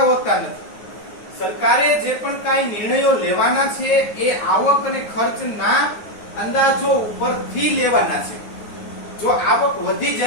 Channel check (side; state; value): right; late; 9.5 ms